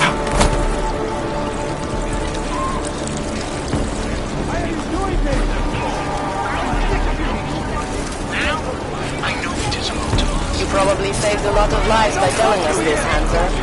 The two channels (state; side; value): identical; both; correlation 1.00